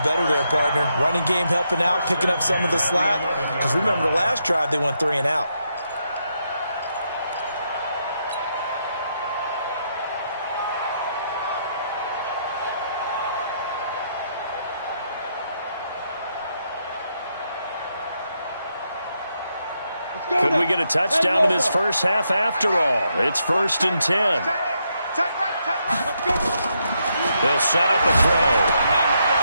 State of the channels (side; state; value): both; inverted; correlation -0.79